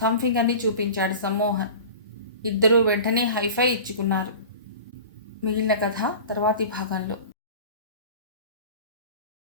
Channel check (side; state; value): both; inverted; correlation -0.37